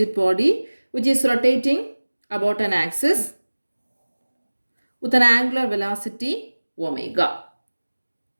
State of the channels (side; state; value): both; inverted; correlation -1.00